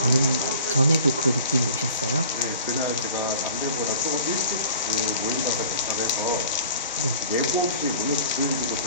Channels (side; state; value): both; inverted; correlation -0.45